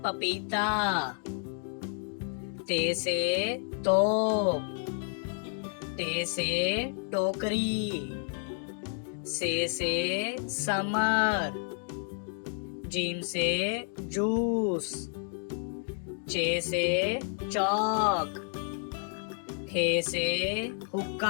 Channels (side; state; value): right; silent; 57 dB below the other